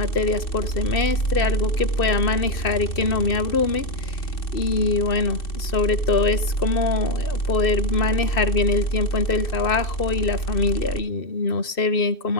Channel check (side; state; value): right; late; 2.6 ms